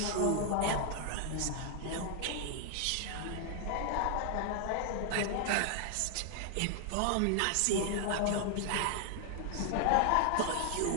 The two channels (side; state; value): both; different; correlation 0.00